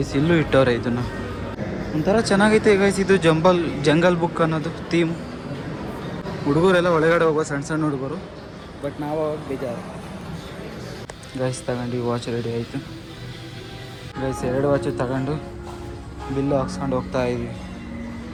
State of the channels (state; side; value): identical; both; correlation 1.00